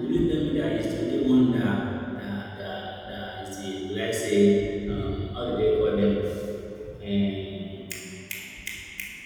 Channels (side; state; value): both; identical; correlation 1.00